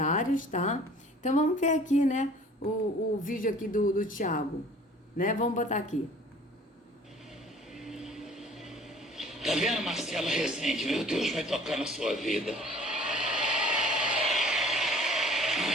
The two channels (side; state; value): both; normal; correlation 0.50